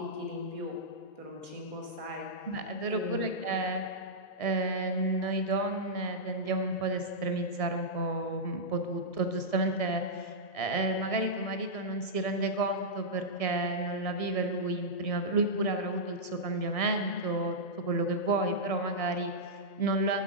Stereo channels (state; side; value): late; right; 1.7 ms